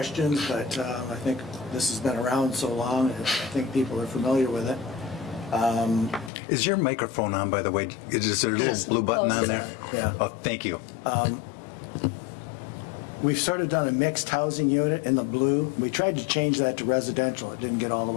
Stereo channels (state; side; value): drops out; right; at 6.3 s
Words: but I think this has been around so long, I think people are familiar with it. Is your microphone on, by the way? Is there a little blue button on there? Yeah. Oh, thank you. we've sort of done a mixed housing unit in the blue. We tried to change that to residential. It didn't get all the